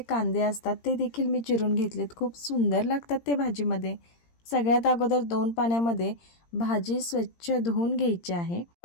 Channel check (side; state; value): right; late; 17 ms